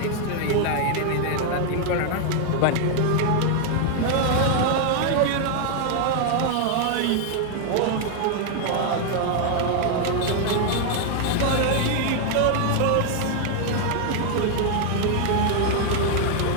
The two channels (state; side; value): different; both; correlation 0.00